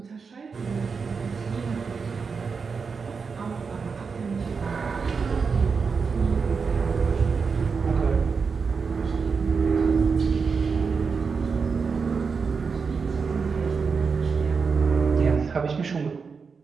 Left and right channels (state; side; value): quieter; left; 5.3 dB